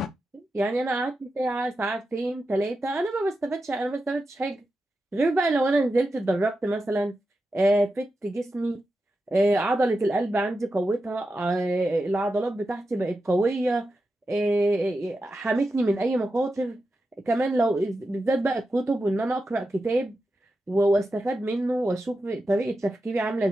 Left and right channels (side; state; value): both; normal; correlation 0.90